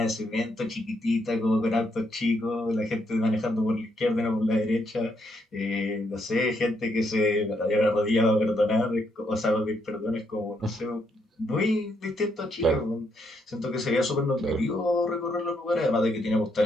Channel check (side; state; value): both; normal; correlation 0.76